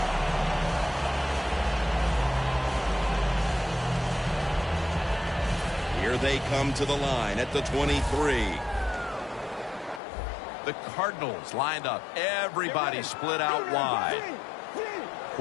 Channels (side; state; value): right; drops out; at 10.0 s